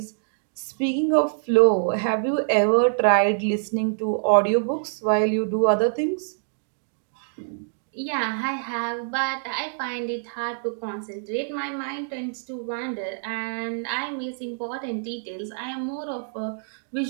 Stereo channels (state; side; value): silent; left; digital silence